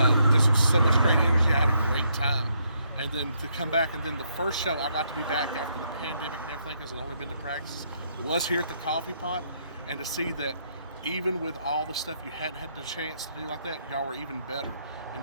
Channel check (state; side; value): inverted; both; correlation -0.74